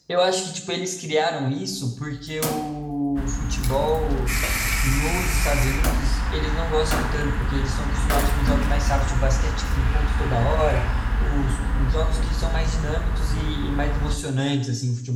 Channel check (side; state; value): both; identical; correlation 1.00